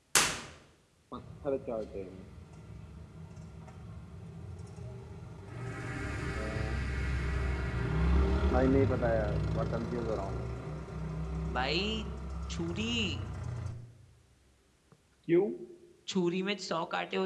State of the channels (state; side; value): identical; both; correlation 1.00